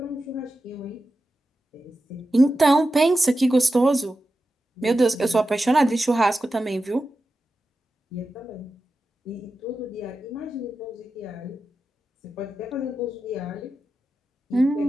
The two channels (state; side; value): normal; both; correlation 0.91